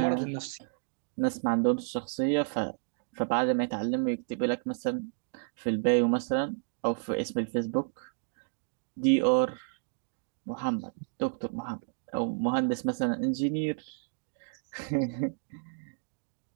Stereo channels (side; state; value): left; silent; digital silence